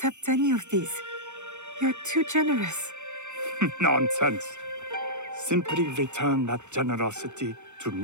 any of these. You're too generous. Nonsense. Simply return that generosity to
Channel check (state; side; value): late; left; 0.83 ms